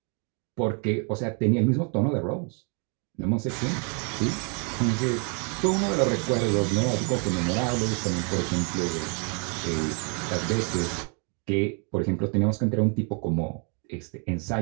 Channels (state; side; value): quieter; left; 38.2 dB